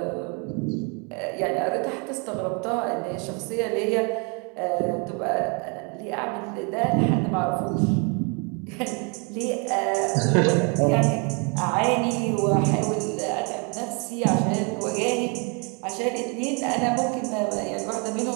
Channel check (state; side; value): quieter; left; 34.4 dB